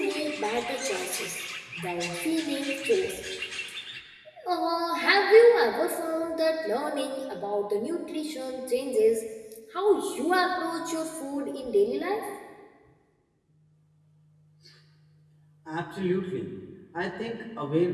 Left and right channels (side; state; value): both; identical; correlation 1.00